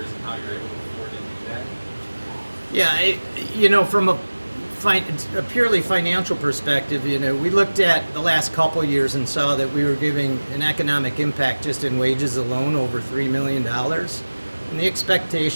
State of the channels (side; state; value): both; inverted; correlation -1.00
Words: and how you're able to afford to do that? Yeah, from a purely financial perspective, we looked at the last couple of years and saw that we were giving an economic impact just in wages alone over $3 million. And the